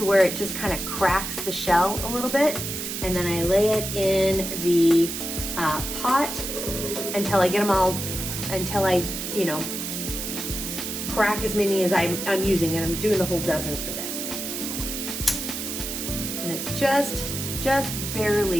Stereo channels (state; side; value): noise; right; hiss, 5 dB below the sound